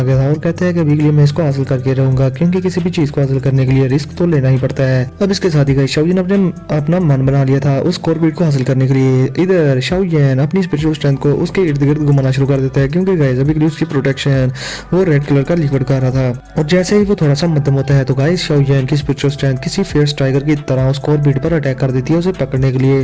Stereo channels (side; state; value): both; identical; correlation 1.00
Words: गया था और कहता है कि अभी के लिए मैं इसको हासिल करके रहूंगा क्योंकि किसी भी चीज को हासिल करने के लिए रिस्क तो लेना ही पड़ता है। अब इसके साथ ही गाइस शाओ यान अपना मन बना लिया था उस कोर बीट को हासिल करने के लिए इधर शाओ यान अपनी स्पिरिचुअल स्ट्रेंथ को उसके इर्द गिर्द घुमाना शुरू कर देता है, क्योंकि गाइस अभी के लिए उसकी प्रोटेक्शन वो रेड कलर का लिक्विड का रहा था। और जैसे ही वो थोड़ा सा मध्यम होता है तो गाइस शाओ यान की स्पिरिचुअल स्ट्रेंथ किसी फियर्स टाइगर की तरह उस कोर बीट पर अटैक कर देती है उसे पकड़ने के